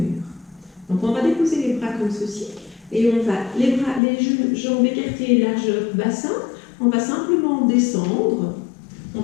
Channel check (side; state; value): right; drops out; at 4.0 s